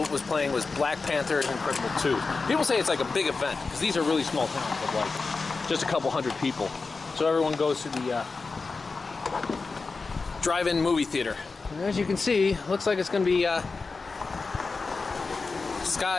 was playing was Black Panther and Incredible 2. People say it's like a big event because these are really small towns of like just a couple hundred people. So everyone goes to the drive-in movie theater. And as you can see, looks like it's going to be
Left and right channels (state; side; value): quieter; right; 4.2 dB